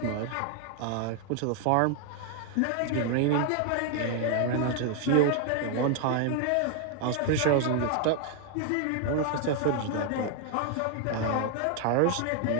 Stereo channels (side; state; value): both; different; correlation 0.00